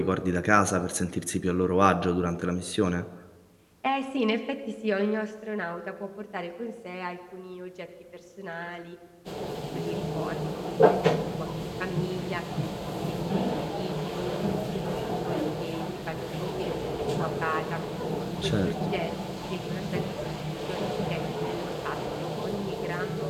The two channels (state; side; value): identical; both; correlation 1.00